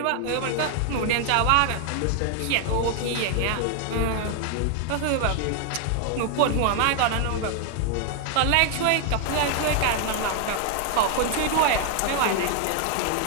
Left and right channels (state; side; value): different; both; correlation 0.00